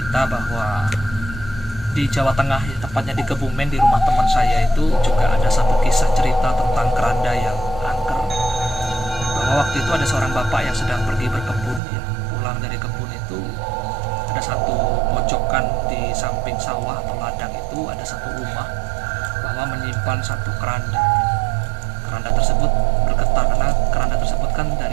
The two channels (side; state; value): left; drops out; at 11.8 s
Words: bahwa di Jawa Tengah, tepatnya di Kebumen, di rumah teman saya itu juga ada satu kisah cerita tentang keranda yang angker. Bahwa waktu itu ada seorang bapak yang sedang pergi berkebun ya. Pulang dari kebun itu ada satu pojokan di samping sawah atau ladang itu ada satu rumah bahwa menyimpan satu keranda. Keranda tersebut bergetar karena keranda tersebut kan